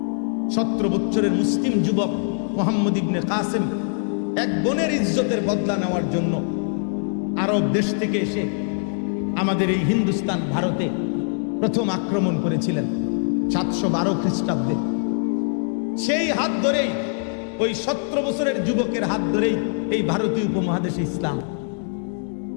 17 বছরের মুসলিম যুবক মোহাম্মদ ইবনে কাসেম এক বোনের ইজ্জতের বদলা নেওয়ার জন্য আরব দেশ থেকে এসে আমাদের এই হিন্দুস্তান, ভারতে প্রথম আক্রমণ করেছিলেন 712 খ্রিস্টাব্দে। সেই হাত ধরেই, ওই 17 বছরের যুবকের হাত ধরেই এই ভারতীয় উপমহাদেশে ইসলাম।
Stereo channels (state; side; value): silent; right; 63 dB below the other